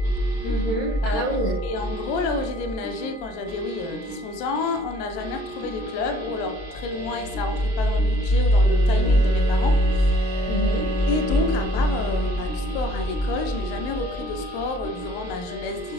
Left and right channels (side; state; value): right; late; 23 ms